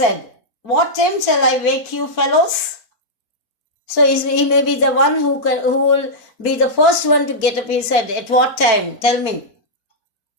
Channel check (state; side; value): late; right; 4.4 ms